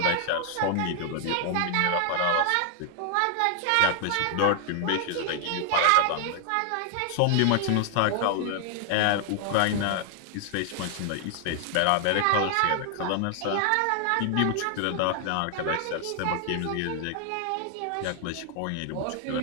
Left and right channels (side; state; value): both; different; correlation 0.00